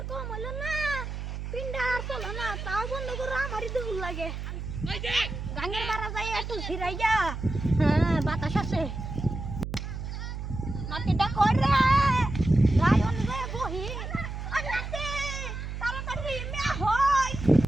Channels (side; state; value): right; noise; hum, 6 dB below the sound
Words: তো মনে না পিন্ডা আর চলে না তাও বন্ধ করে আমারই কেমন লাগে গাঙ্গের বাড়া যাই একটু ঝিরাই যা হ্যাঁ বাতাস আছে নাতিটা কই রে রায়ন রে বহি ওই নাতি তাড়াতাড়ি মে হই